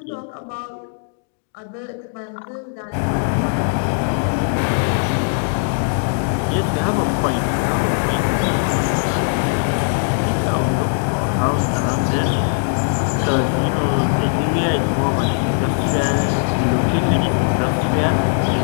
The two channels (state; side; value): silent; right; digital silence